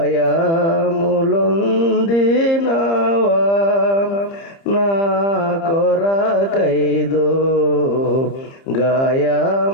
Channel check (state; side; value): late; right; 30 ms